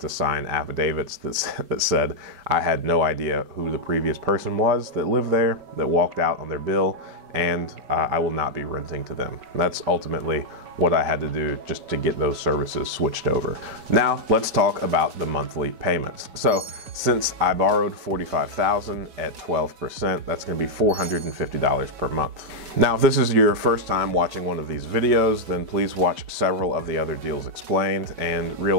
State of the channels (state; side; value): late; left; 5.3 ms